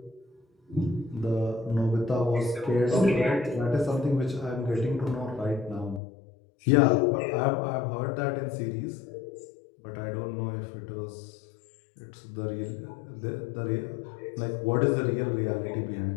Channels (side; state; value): right; drops out; at 6.0 s